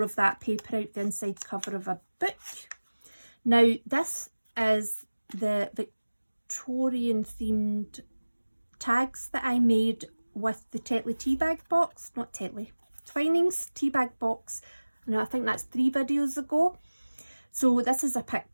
of that paper out the inside cover of a book. Now this is the Victorian themed tags that I made with the Tetley tea bag box, not Tetley, Twinings tea bag box. Now I think that's 3 videos ago. So this is a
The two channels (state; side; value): inverted; both; correlation -1.00